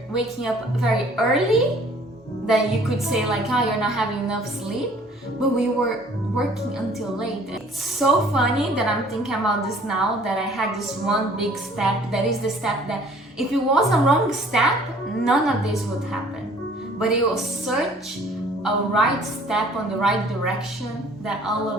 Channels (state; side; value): normal; both; correlation 0.55